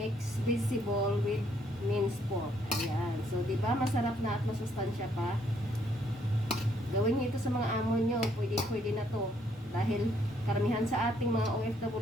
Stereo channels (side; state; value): both; normal; correlation 0.69